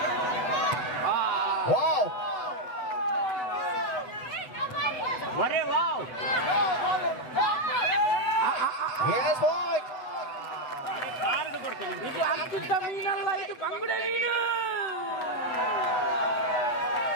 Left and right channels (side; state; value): right; late; 8.0 ms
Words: Wow! Wow! Yes, boy! ಇದು ಅತ್ಯುತ್ತ ಮೀನಲ್ಲ, ಇದು ಬಂಗುಡೆ ಮೀನು.